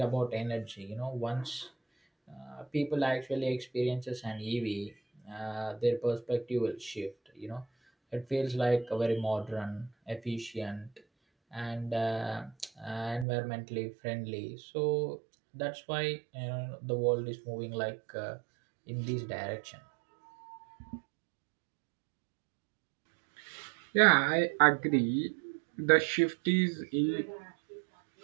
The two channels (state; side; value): drops out; left; at 13.2 s